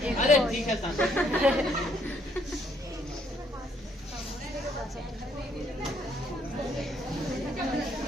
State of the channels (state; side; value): normal; both; correlation 0.69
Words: अरे ठीक है सर।